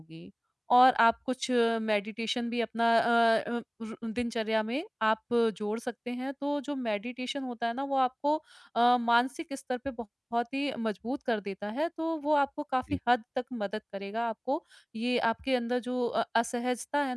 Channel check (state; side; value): identical; both; correlation 1.00